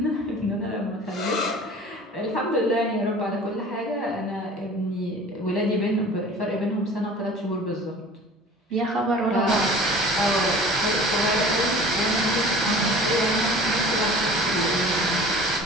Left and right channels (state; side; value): normal; both; correlation 0.44